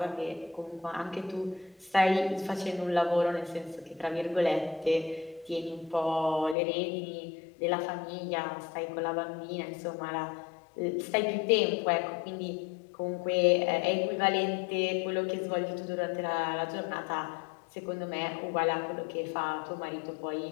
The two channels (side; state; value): right; drops out; at 6.6 s